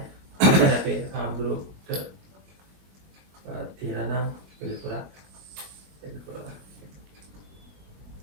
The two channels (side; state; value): left; late; 21 ms